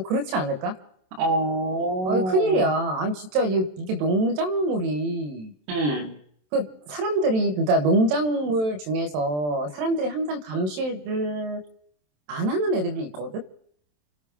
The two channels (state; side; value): late; left; 27 ms